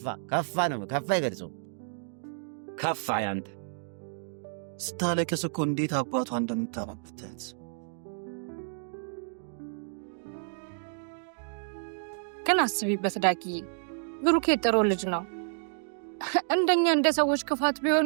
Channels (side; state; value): left; silent; digital silence